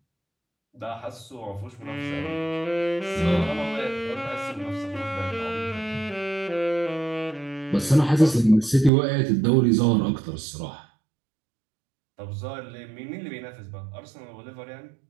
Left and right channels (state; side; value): drops out; left; at 8.9 s